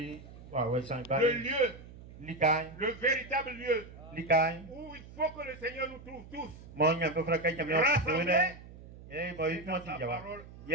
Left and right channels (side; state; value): right; noise; hum, 17 dB below the sound